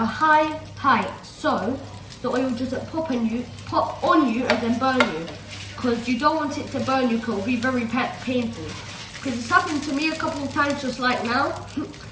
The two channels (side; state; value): both; identical; correlation 1.00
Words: high height so the oil doesn't pop on you and then burn you. Because you don't want it to burn you, because it will be very painful. Because it's happened to me a couple of times just like now.